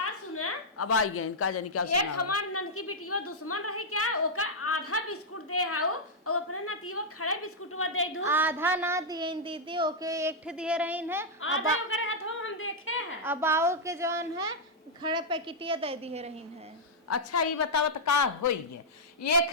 सुना, अब आई गए इनका जानी क्या एक हमार ननकी बिटिया दुश्मन रही क्या, ओका आधा बिस्कुट दे हाउ और अपने नतीवा खड़े बिस्कुटवा दे दू। आधा ना दिए दीदी, ओके एक ठे दिए रही है, आधा ओकरे हाथवा में हम देखे हैं। अब आओ के जौन है खड़े पैकेटिया दे दिए रही है। अच्छा ये बताओ तो का होई है,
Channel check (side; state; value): both; normal; correlation -0.05